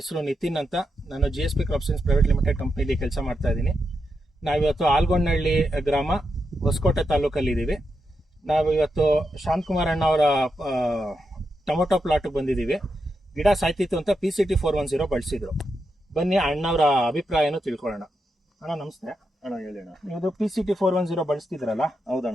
ನಿತಿನ್ ಅಂತ. ನಾನು GSP crop science private limited ಕಂಪ್ನಿಲಿ ಕೆಲಸ ಮಾಡ್ತಾ ಇದ್ದೀನಿ. ನಾವಿವತ್ತು ಆಲ್ಗೊಂಡಹಳ್ಳಿ ಗ್ರಾಮ, ಹೊಸಕೋಟೆ ತಾಲೂಕಲ್ಲಿ ಇದ್ದೀವಿ. ನಾವಿವತ್ತು ಶಾಂತಕುಮಾರ್ ಅಣ್ಣ ಅವರ ಟೊಮೊಟೊ ಪ್ಲಾಟ್ಗೆ ಬಂದಿದ್ದೀವಿ. ಗಿಡ ಸಾಯ್ತಿತ್ತು ಅಂತ PCT 410 ಬಳಸಿದ್ರು. ಬನ್ನಿ ಅಣ್ಣವರ ಅಭಿಪ್ರಾಯನೂ ತಿಳ್ಕೊಳ್ಳೋಣ. ಅಣ್ಣ ನಮಸ್ತೆ. ಅಣ್ಣ ಹೇಳಿ ಅಣ್ಣ. ಇದು PCT 410 ಬಳಸ್ತಿದ್ರಲ್ಲ,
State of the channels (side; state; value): both; normal; correlation 0.85